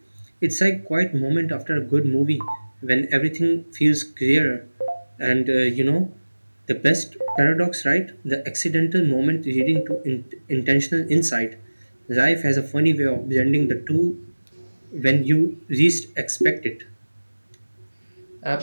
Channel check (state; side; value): inverted; both; correlation -1.00